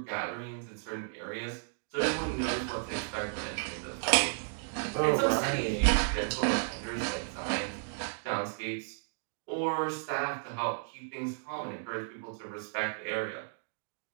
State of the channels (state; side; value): silent; left; digital silence